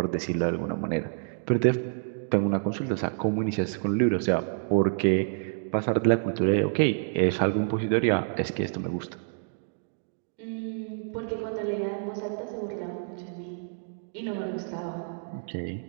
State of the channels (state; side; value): silent; left; digital silence